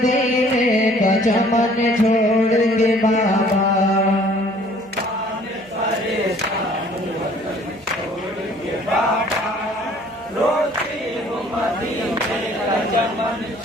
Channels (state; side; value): noise; right; hum, 27 dB below the sound